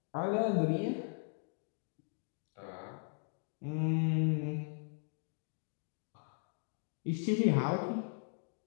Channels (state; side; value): silent; right; digital silence